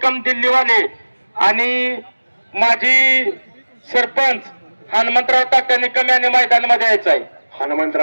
दिल्लीवाले आणि माजी सरपंच हनुमंतराव तात्या निकम यांनी मैदानामध्ये यायचं आहे.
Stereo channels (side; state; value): both; inverted; correlation -1.00